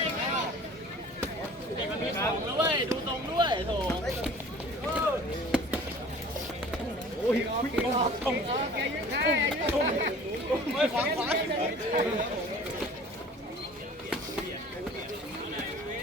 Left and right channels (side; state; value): both; normal; correlation 0.46